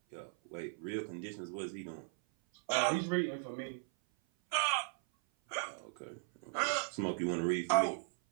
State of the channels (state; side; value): silent; left; 53 dB below the other